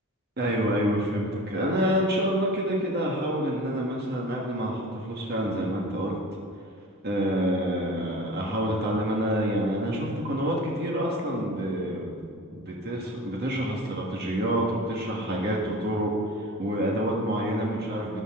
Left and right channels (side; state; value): both; normal; correlation 0.39